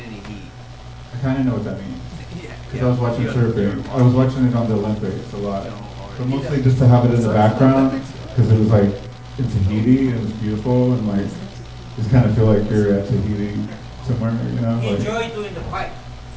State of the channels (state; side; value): identical; both; correlation 1.00